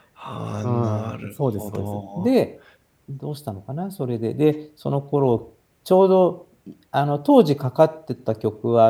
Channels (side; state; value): both; identical; correlation 1.00